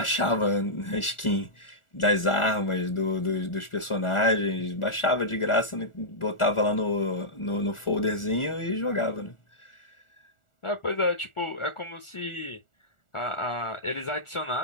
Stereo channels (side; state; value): right; late; 1.4 ms